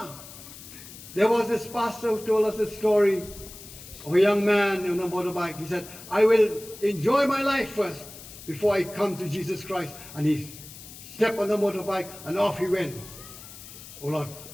There was this pastor who told us a story of a young man on a motorbike. He said, "I will enjoy my life first before I come to Jesus Christ," and he step on the motorbike and off he went. Ola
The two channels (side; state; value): left; noise; hiss, 16 dB below the sound